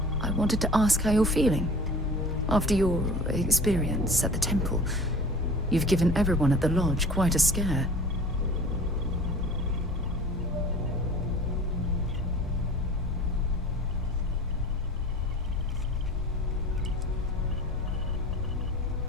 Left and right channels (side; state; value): both; normal; correlation 0.41